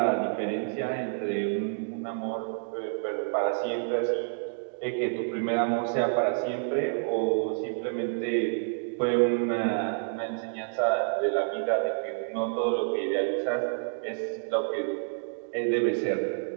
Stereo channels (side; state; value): left; silent; digital silence